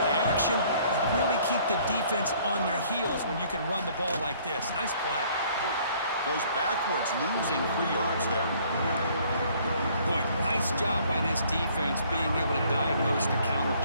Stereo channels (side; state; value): both; inverted; correlation -0.59